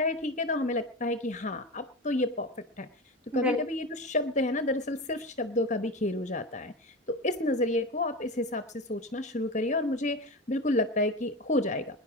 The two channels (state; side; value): normal; both; correlation 0.24